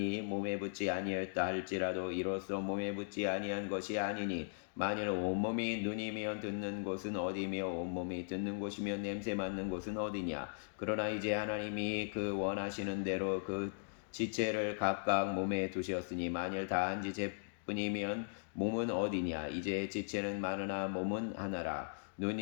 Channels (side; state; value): right; silent; digital silence